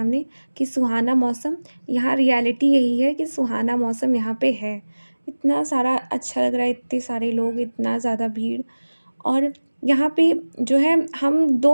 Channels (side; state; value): both; inverted; correlation -1.00